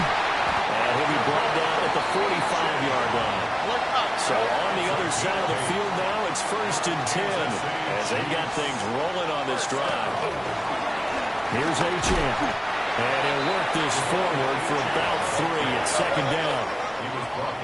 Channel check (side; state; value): both; identical; correlation 1.00